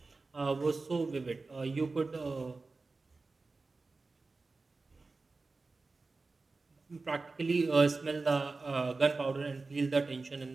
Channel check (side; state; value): left; quieter; 3.8 dB